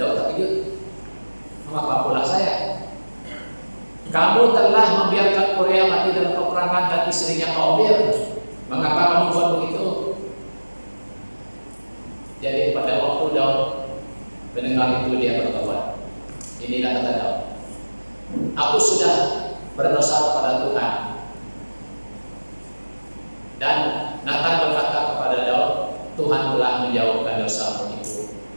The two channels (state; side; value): inverted; both; correlation -1.00